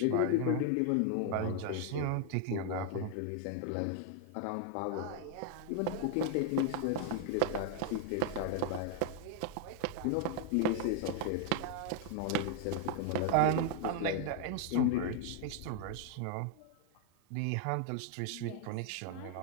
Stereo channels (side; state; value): both; different; correlation 0.00